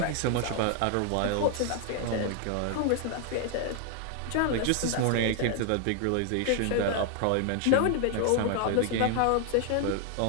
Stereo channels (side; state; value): both; different; correlation 0.00